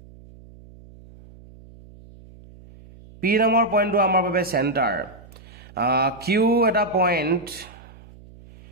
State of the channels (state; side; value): noise; right; hum, 22 dB below the sound